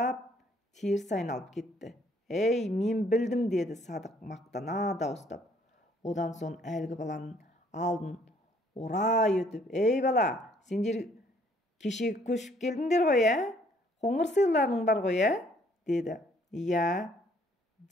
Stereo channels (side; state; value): both; normal; correlation 0.63